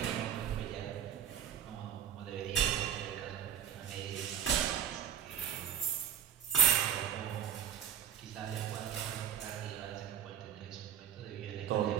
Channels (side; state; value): left; quieter; 9.6 dB